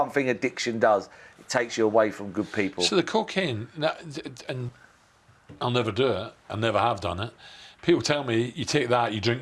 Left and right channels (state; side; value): identical; both; correlation 1.00